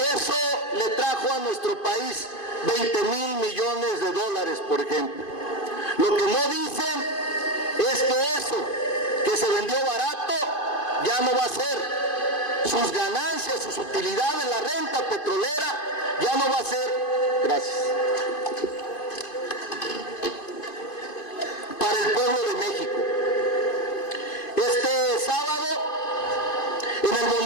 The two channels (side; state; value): right; late; 2.5 ms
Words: eso le trajo a nuestro país 20,000 millones de dólares, por ejemplo. Lo que no dicen es que eso que se vendió barato ya no va a ser. Sus ganancias, sus utilidades, la renta petrolera ya no va a ser, gracias, para el pueblo de México. Este sábado, en el